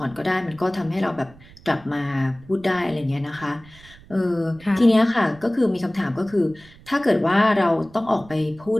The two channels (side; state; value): right; noise; rumble, 23 dB below the sound